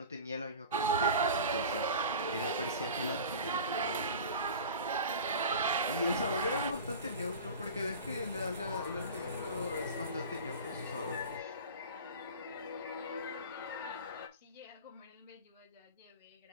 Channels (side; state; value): both; inverted; correlation -0.35